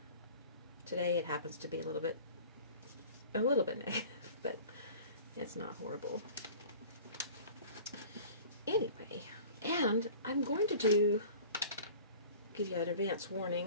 Today it happens to be a little bit negative, but it's not horrible. Anyway, and I'm going to give you an advance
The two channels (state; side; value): inverted; both; correlation -0.43